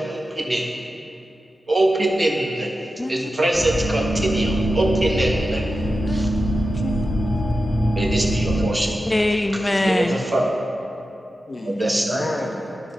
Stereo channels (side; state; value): both; normal; correlation 0.92